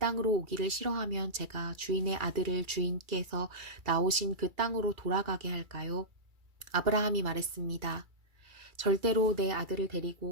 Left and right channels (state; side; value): late; left; 2.3 ms